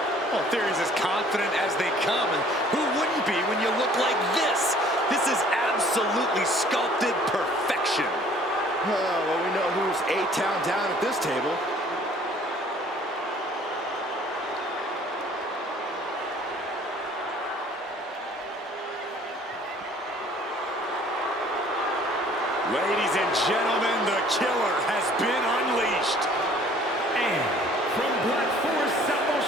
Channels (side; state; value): both; normal; correlation 0.55